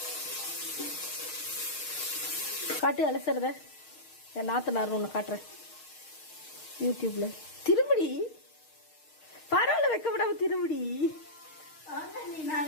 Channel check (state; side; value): late; right; 6.5 ms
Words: காட்டு அலசுறத என் நாத்தனார் ஒன்று காட்டுறேன் யூடியூப்ல. திரும்படி பரவாயில்ல, வைக்க விடாம திரும்படி.